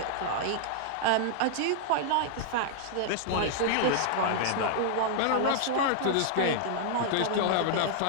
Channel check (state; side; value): different; both; correlation -0.01